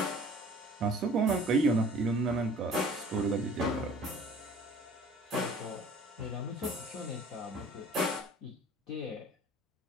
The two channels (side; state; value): both; normal; correlation 0.49